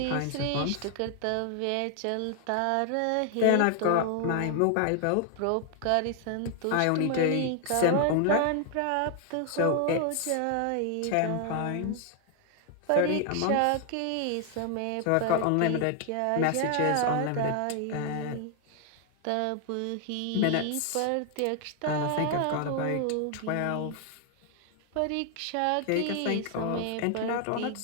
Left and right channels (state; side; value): different; both; correlation 0.00